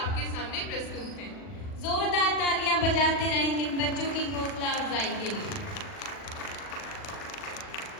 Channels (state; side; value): late; right; 40 ms